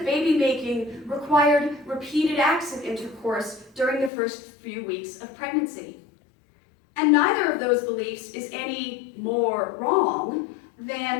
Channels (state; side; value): drops out; right; at 4.1 s